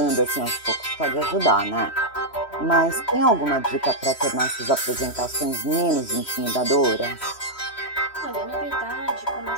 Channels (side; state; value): right; late; 3.1 ms